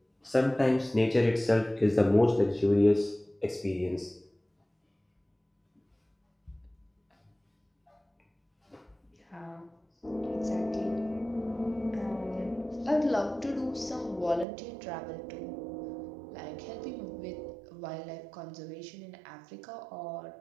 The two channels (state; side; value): drops out; left; at 14.5 s